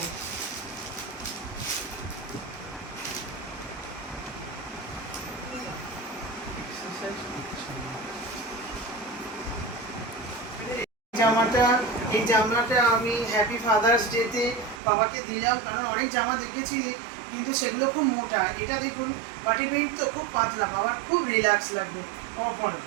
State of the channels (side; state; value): left; drops out; at 14.8 s